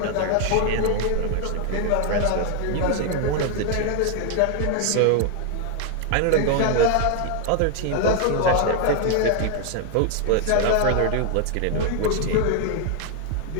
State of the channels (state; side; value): different; both; correlation 0.00